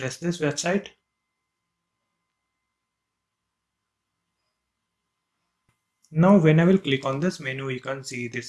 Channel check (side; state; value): both; identical; correlation 1.00